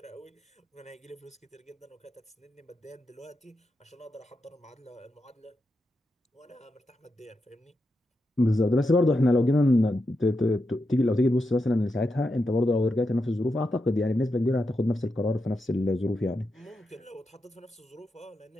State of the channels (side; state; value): both; normal; correlation 0.87